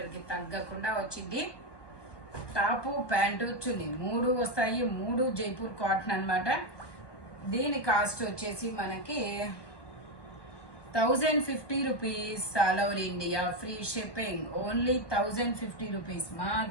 కి తగ్గకుండా వచ్చింది. టాప్ ప్యాంటు చున్నీ 3 వస్తాయి. 3 జైపూర్ కాటన్ అనమాట. దీని కాస్ట్ వచ్చేసి మనకి 1050 rupees. All over India free shipping. Only 1050 rupees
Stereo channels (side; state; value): right; late; 1.2 ms